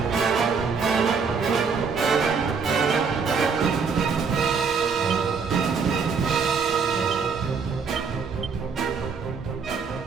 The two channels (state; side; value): quieter; left; 5.5 dB